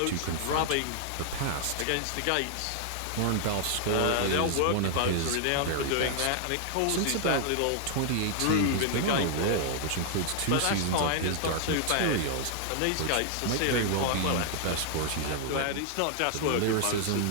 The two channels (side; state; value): both; different; correlation 0.00